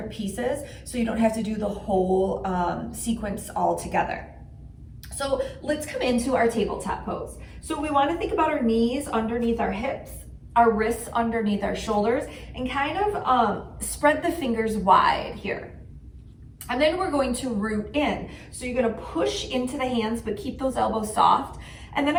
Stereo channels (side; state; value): both; identical; correlation 1.00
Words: pieces so you don't have to do the whole sequence all together. So let's come into our tabletop pose. So we want to think about our knees underneath our hips, our wrists underneath our shoulders, and kind of spread the fingers wide here. And then we're going to root in. So you're going to push into the hands, but keep those elbows soft. And then